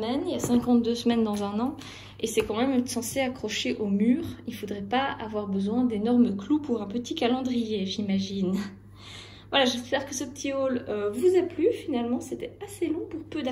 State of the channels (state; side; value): identical; both; correlation 1.00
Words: Il y a 52 semaines dans un an. Et c'est quand même censé accrocher au mur. Il ne faudrait pas avoir besoin d'énormes clous pour un petit calendrier, j'imagine. Voilà, j'espère que ce petit haul vous a plu. Finalement, c'était assez long pour peu